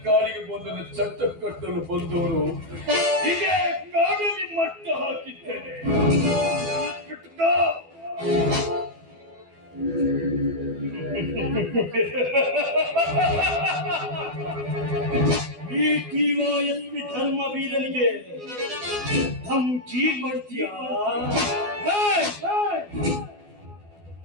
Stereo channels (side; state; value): left; late; 12 ms